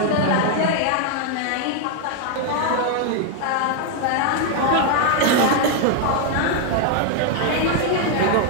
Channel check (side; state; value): both; different; correlation 0.00